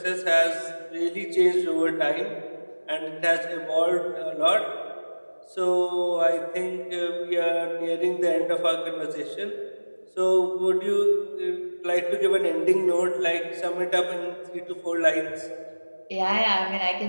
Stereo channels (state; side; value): inverted; both; correlation -1.00